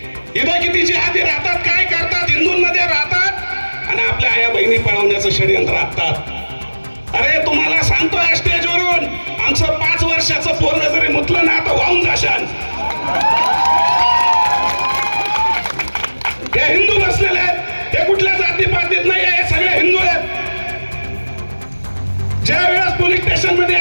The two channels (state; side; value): inverted; both; correlation -1.00